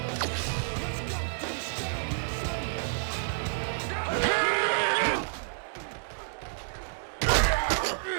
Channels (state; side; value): silent; left; digital silence